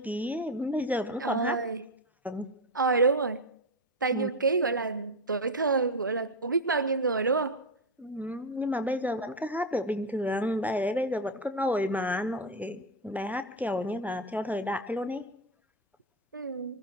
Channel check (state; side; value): normal; both; correlation 0.10